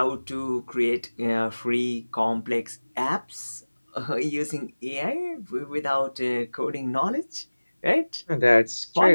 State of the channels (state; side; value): inverted; both; correlation -1.00